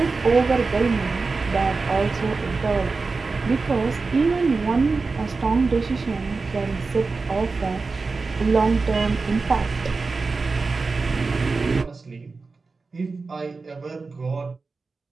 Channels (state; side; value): quieter; left; 4.1 dB